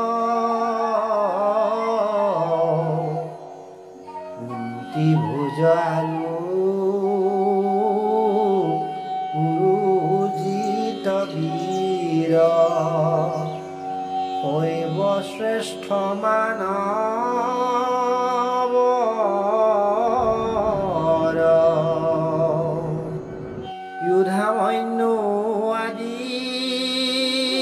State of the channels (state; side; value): identical; both; correlation 1.00